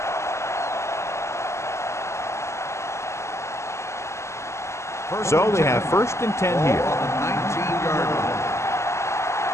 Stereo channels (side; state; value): right; late; 0.13 ms